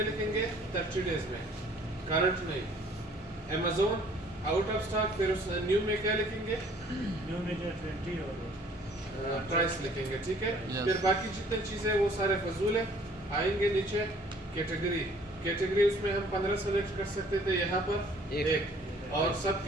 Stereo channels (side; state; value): both; normal; correlation 0.56